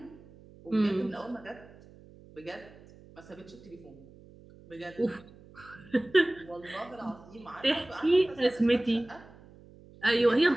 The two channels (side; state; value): right; noise; hum, 22 dB below the sound